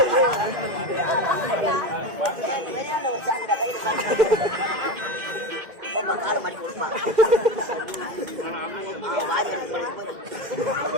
கால மாட்டி கொடுப்பான்.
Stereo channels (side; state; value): left; late; 2.1 ms